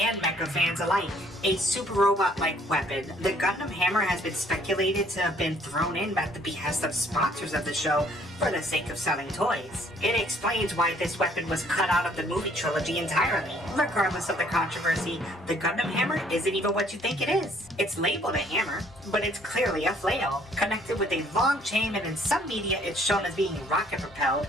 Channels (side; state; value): both; normal; correlation 0.62